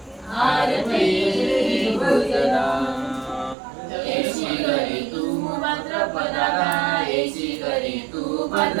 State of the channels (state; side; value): drops out; left; at 3.6 s